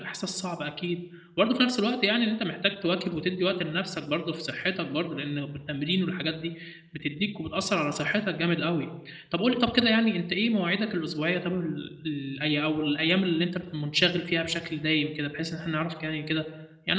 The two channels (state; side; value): identical; both; correlation 1.00